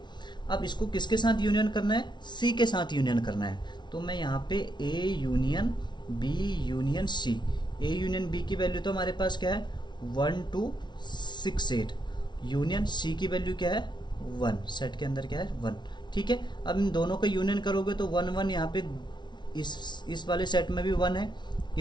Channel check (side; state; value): right; late; 0.21 ms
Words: अब इसको किसके साथ यूनियन करना है, सी के साथ यूनियन करना है। तो मैं यहाँ पे A union B union C, A union B की वैल्यू तो हमारे पास क्या है 1 2 6 8, यूनियन सी की वैल्यू क्या है 1, सेट के अंदर क्या है 1। ठीक है, अब इन दोनों का यूनियन करोगे तो 1 1 यहाँ पे इस वाले सेट में भी 1 है,